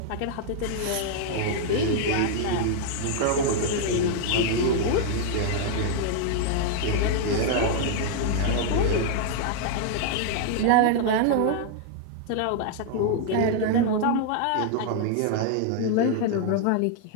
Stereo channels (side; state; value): both; different; correlation 0.00